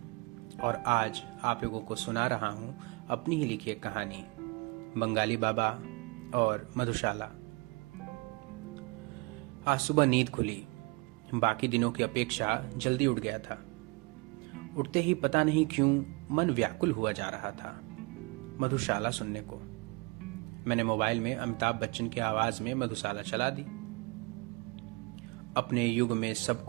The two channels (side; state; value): left; quieter; 27.9 dB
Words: और आज आप लोगों को सुना रहा हूँ अपनी ही लिखी एक कहानी, बंगाली बाबा और मधुशाला। आज सुबह नींद खुली। बाकी दिनों की अपेक्षा जल्दी उठ गया था। उठते ही पता नहीं क्यों मन व्याकुल हुआ जा रहा था मधुशाला सुनने को। मैंने मोबाइल में अमिताभ बच्चन की आवाज में मधुशाला चला दी। अपने युग में